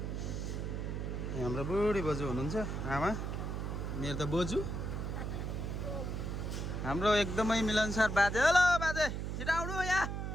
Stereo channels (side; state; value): right; noise; hum, 3 dB below the sound